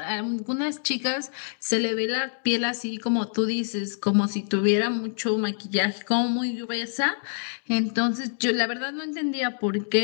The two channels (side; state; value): right; silent; digital silence